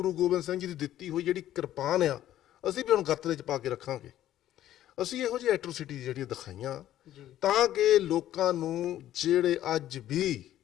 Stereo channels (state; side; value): quieter; right; 12.7 dB